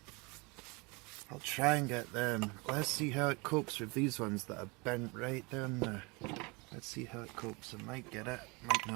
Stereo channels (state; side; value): quieter; left; 27.6 dB